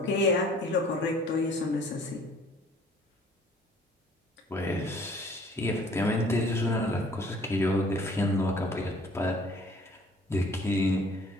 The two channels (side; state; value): both; normal; correlation 0.54